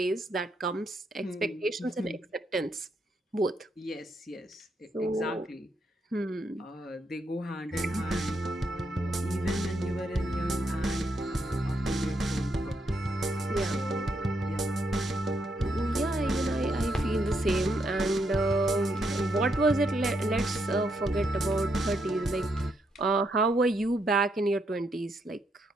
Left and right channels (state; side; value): normal; both; correlation 0.78